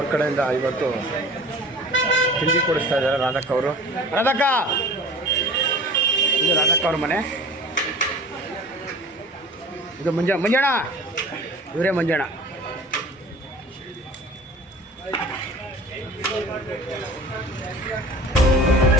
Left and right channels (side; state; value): both; normal; correlation 0.42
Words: ಕಡೆಯಿಂದ ಇವತ್ತು ತಿಂಡಿ ಕೊಡಿಸ್ತಾ ಇದ್ದಾರೆ ರಾಧಕ್ಕ ಅವರು. ರಾಧಕ್ಕ, ಇದು ರಾಧಕ್ಕ ಅವ್ರ ಮನೆ. ಇದು ಮಂಜಣ್ಣ, ಇವರೇ ಮಂಜಣ್ಣ.